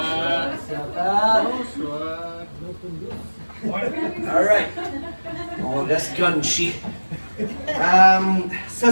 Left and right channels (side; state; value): both; inverted; correlation -1.00